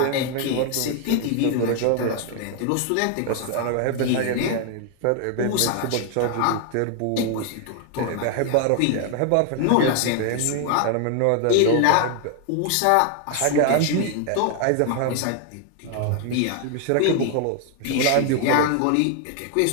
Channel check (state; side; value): different; both; correlation 0.00